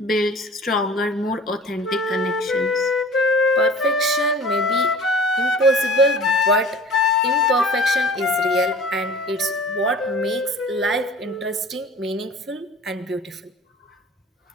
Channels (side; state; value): both; normal; correlation 0.44